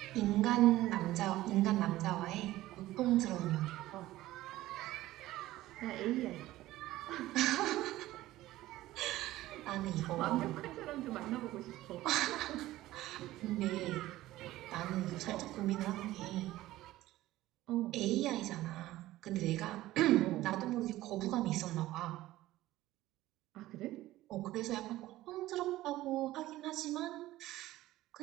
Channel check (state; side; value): quieter; left; 16.1 dB